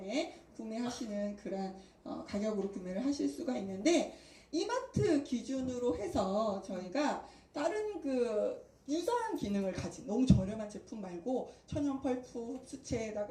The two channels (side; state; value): both; identical; correlation 1.00